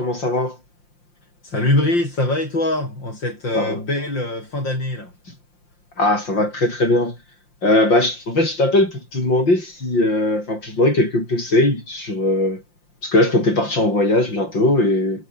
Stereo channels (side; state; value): right; late; 5.7 ms